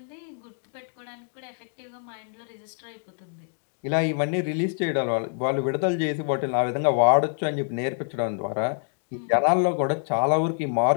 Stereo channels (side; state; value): right; silent; 61 dB below the other